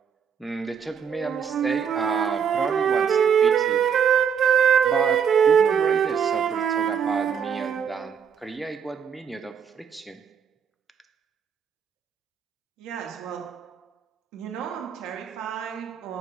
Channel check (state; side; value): quieter; left; 7.2 dB